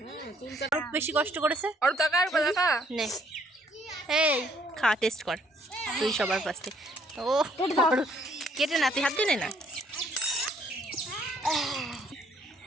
আরো বেশি কষ্ট করেছে। আর কাকা নে, এই খা, টেস্ট কর তুই সবার ফার্স্টে। ও কেটে না, তুই হাত দিয়ে নে না।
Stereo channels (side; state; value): both; normal; correlation 0.65